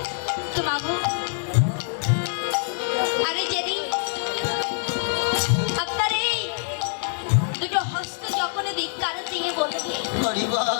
তো মাগো আরে যেদিন আপনার এই দুটো হস্ত যখন ধিক্কার দিয়ে বলবে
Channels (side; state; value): right; silent; 62 dB below the other